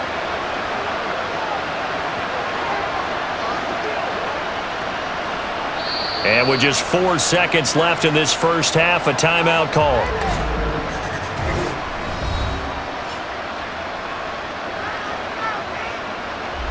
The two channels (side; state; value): both; identical; correlation 1.00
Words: And with just 4 seconds left in this first half, a timeout call.